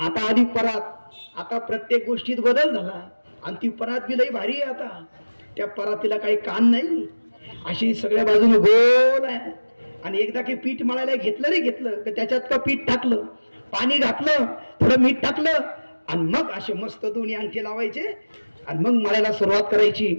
आली परात. आता प्रत्येक गोष्टीत बदल झाला आणि ती परात बी लई भारी आहे. आता त्या परातीला काही कान नाही, अशी सगळ्या बाजूने गोल आहे. आणि एकदा की पीठ मळायला घेतलं की त्याच्यात का पीठ टाकलं, पाणी घातलं, थोडं मीठ टाकलं आणि मग असे मस्त दोन्ही अंगठे लावायचे आणि मग मळायला सुरुवात करायची.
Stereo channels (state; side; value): inverted; both; correlation -1.00